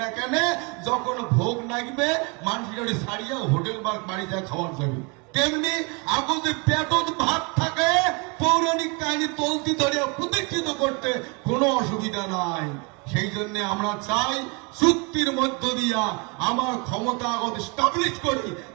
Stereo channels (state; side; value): quieter; left; 30.5 dB